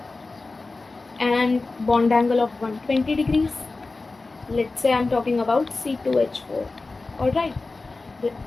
and bond angle of 120 degrees. Let's say I'm talking about C2H4. Alright,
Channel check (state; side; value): quieter; right; 3.6 dB